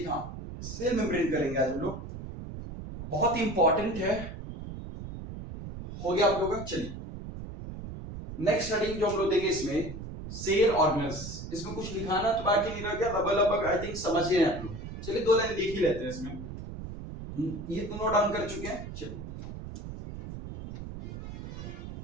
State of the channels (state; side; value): noise; right; rumble, 9 dB below the sound